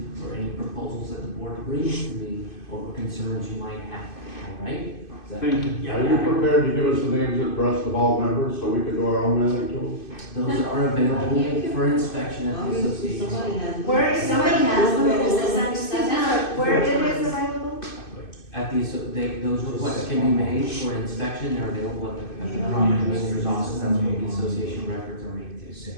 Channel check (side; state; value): right; late; 2.6 ms